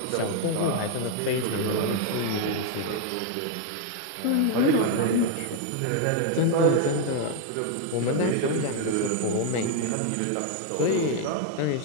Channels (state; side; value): different; both; correlation 0.00